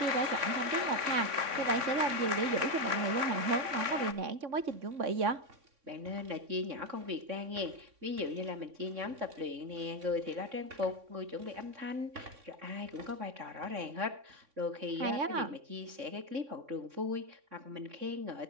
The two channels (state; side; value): late; left; 3.6 ms